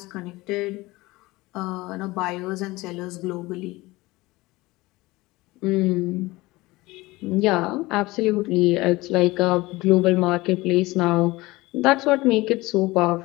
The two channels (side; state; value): right; quieter; 20.7 dB